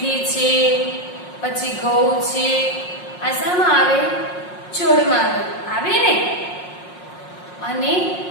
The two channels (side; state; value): right; late; 5.5 ms